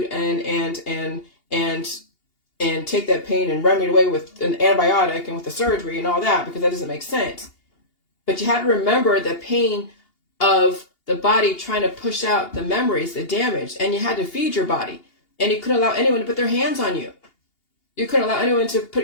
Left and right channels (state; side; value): late; right; 2.8 ms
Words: and take that pain and run it away with an antibiotic and with the surgery and all that, because that doesn't make sense. But you had to remember the pain of the body trying to push out the memories, the damage, and you had to feed your body. And you couldn't allow anyone to put their hands on you. You couldn't allow anyone to